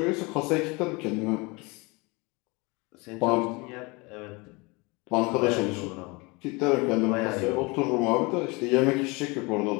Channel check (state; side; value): quieter; right; 26.6 dB